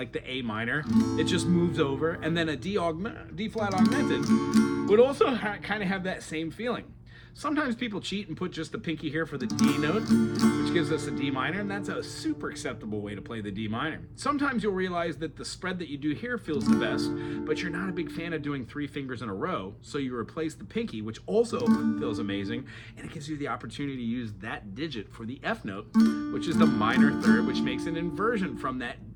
the A minor, it just moves over, and then a D flat augmented would also kind of have that same feeling. Sometimes people cheat and put just the pinky here for the D notes, which gives us a D minor, and that's a super acceptable way to play the D minor. Sometimes you'll realize that the spread that you do here feels the best, but you're not a big fan of doing 3 fingers in a row, so you replace the pinky, which also feels amazing, and it gives you the opportunity to use that digit for the F note, which is the minor third, which makes an inversion from that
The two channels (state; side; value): identical; both; correlation 1.00